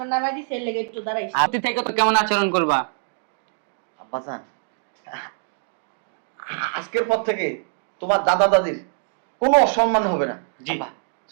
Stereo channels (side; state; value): left; silent; 63 dB below the other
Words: নামাই দিছে, এর লেগে একটু দাঁড়াইছি। আপনি থেকে তো কেমন আচরণ করবা? আব্বা জান, আজকের পর থেকে তোমার দাদা দাদির কোনো অসম্মান হবে না। জি। আব্বা,